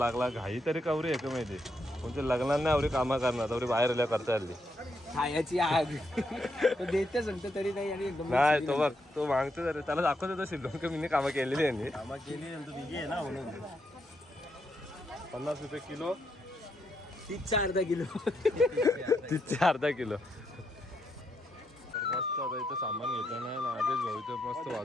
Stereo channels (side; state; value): both; normal; correlation 0.79